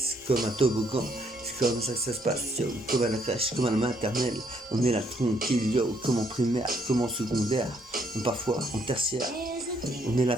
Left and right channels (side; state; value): both; normal; correlation 0.70